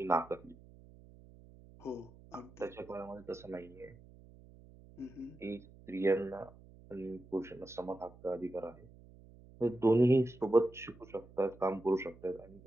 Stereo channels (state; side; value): noise; right; hum, 22 dB below the sound